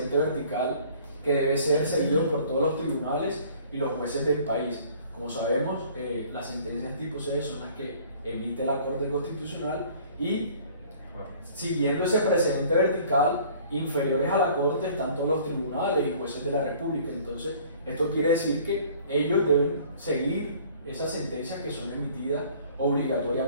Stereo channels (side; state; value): both; inverted; correlation -0.53